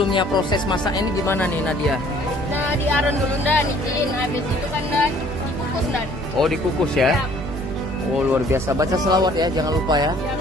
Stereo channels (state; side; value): normal; both; correlation 0.56